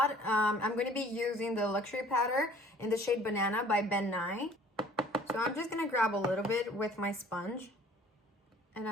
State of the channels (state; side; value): normal; both; correlation 0.53